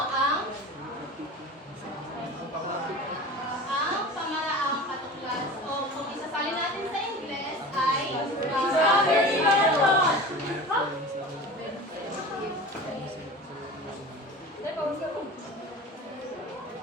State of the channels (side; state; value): both; normal; correlation 0.35